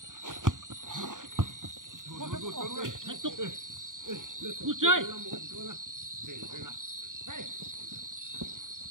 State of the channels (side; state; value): left; late; 0.88 ms